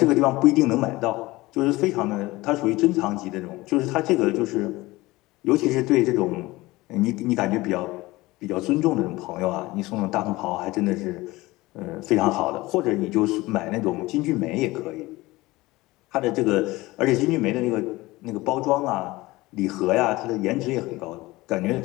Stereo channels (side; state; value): right; quieter; 20.0 dB